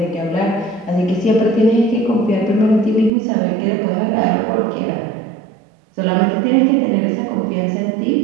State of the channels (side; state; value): left; drops out; at 3.1 s